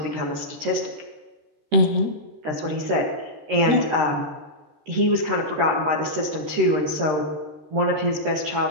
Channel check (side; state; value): left; late; 13 ms